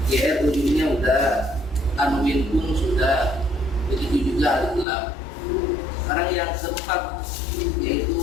JR ujungnya udah, tanwin pun sudah, begitu juga alif lam. Sekarang yang keempat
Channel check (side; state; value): right; drops out; at 4.9 s